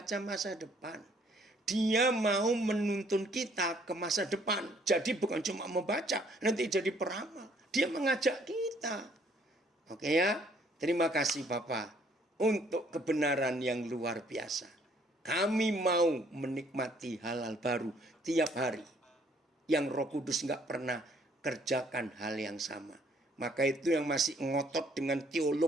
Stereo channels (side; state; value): both; normal; correlation 0.63